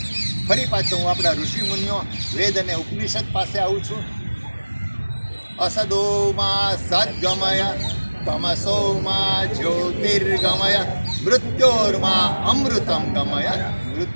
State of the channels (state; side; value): inverted; both; correlation -1.00